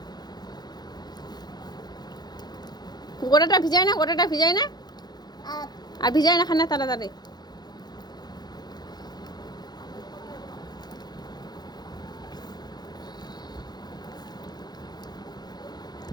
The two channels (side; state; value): right; late; 0.20 ms